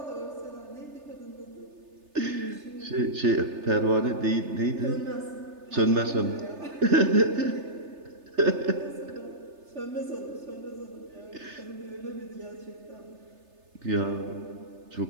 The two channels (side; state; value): left; late; 3.3 ms